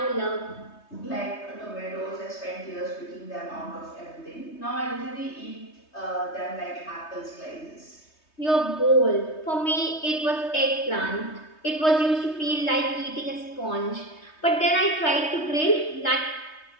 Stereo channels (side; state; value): right; late; 3.2 ms